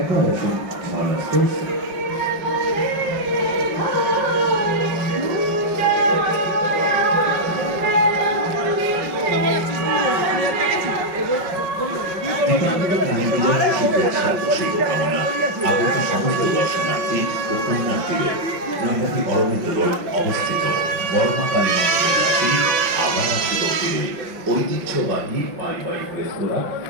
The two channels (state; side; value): late; left; 5.7 ms